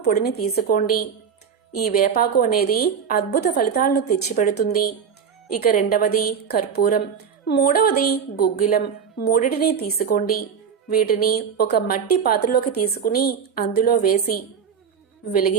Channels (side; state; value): left; quieter; 6.9 dB